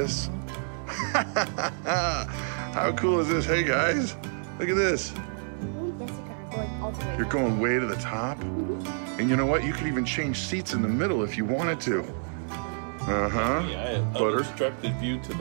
How cool is this? Hey, guys. Look at this. You're going way to the top. And you know what? You could even change seats in the middle if you wanted to. Uh-huh. Yeah, butter. Unobstructed view to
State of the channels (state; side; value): silent; left; 59 dB below the other